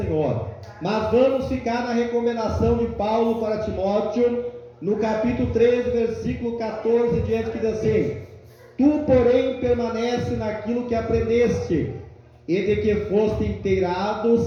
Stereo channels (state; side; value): identical; both; correlation 1.00